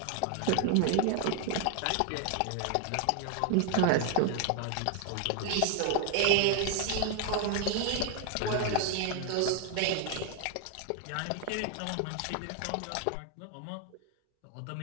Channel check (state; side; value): different; both; correlation 0.01